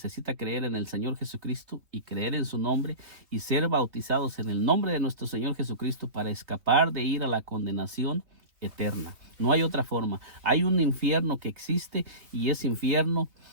creer en el Señor Jesucristo y creer en su nombre y ser bautizados en el nombre de nuestro Señor Jesucristo para escapar de ir a la condenación eterna. No hay otra forma. Hay un infierno que existe, y ese infierno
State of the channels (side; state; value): left; late; 3.0 ms